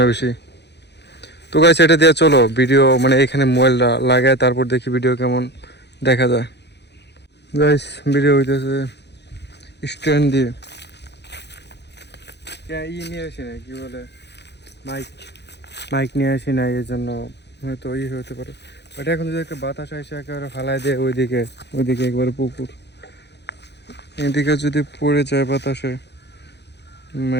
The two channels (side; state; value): right; late; 0.50 ms